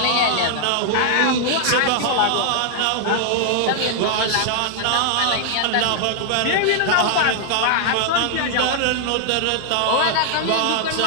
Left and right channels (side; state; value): both; different; correlation 0.00